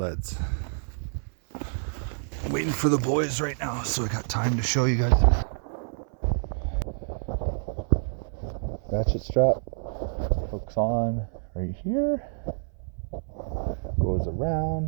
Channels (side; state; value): left; silent; 60 dB below the other